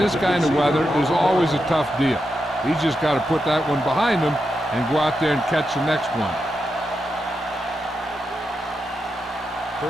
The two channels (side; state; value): both; normal; correlation 0.86